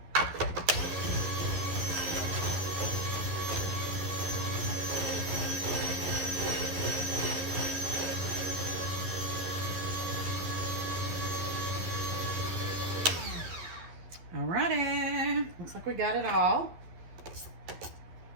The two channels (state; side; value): late; left; 12 ms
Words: Alrighty, looks like we got it all.